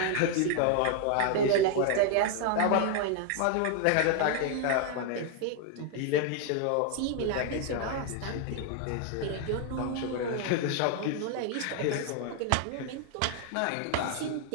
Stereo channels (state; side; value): different; both; correlation 0.00